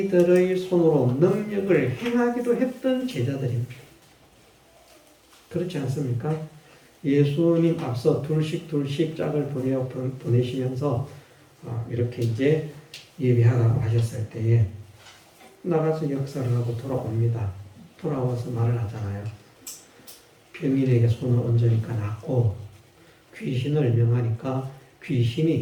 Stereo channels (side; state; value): both; identical; correlation 1.00